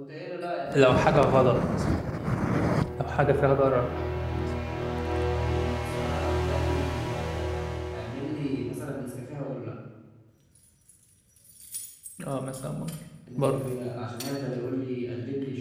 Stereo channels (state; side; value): identical; both; correlation 1.00